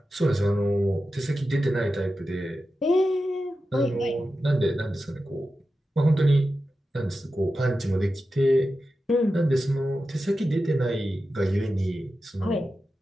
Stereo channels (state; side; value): normal; both; correlation 0.92